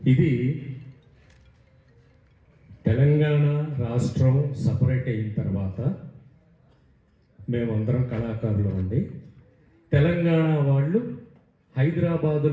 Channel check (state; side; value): identical; both; correlation 1.00